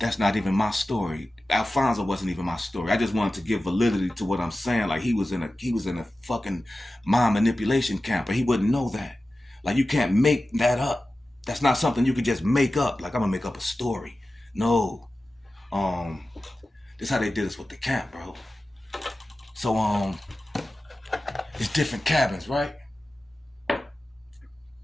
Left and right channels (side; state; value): both; normal; correlation 0.95